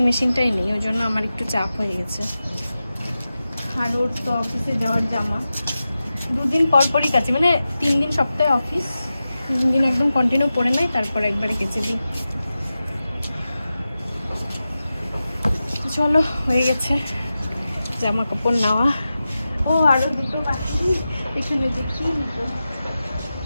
মেশিনটাই নেই, ওই জন্য আমার একটু চাপ হয়ে গেছে। আর ওর তো অফিসে যাওয়ার জামা 2 দিন পর পরই কাচি, মানে 3 দিন সপ্তাহে অফিস, 3 দিন একদম কন্টিনিউ পরে নাই, তারপর একবারে কেচে দিই। চলো হয়ে গেছে জামা কাপড় নেওয়া। ও আরো দুটো বাকি, এখানে দেখি নিতো।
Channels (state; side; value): inverted; both; correlation -0.93